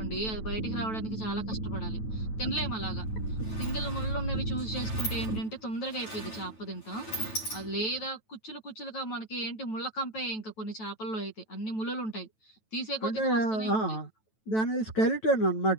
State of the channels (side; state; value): right; late; 9.2 ms